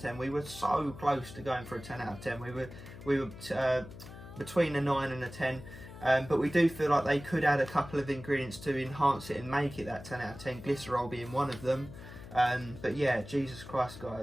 10. We were so close to going for a 10 out of 10. We were between a 9 and a 10, but we do feel like they could add a couple of ingredients to enhance it and make it that 10 out of 10, glycerol being one of them. But yeah, Jesus Christ,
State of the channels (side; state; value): left; noise; hum, 15 dB below the sound